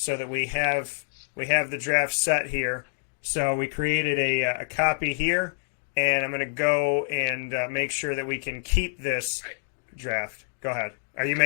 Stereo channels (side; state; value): right; silent; digital silence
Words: that we have the draft set here. So we created a copy here, and I'm going to go and make sure that we can keep this draft. Go ahead. Are you